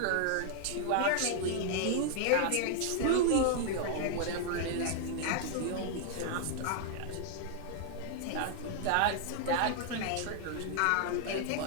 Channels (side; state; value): both; different; correlation 0.00